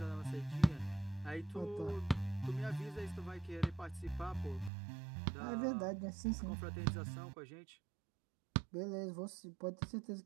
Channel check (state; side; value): drops out; left; at 4.7 s